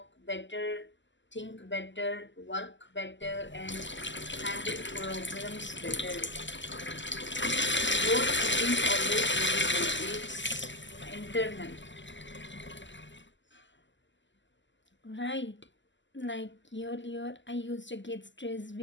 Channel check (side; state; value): right; late; 0.54 ms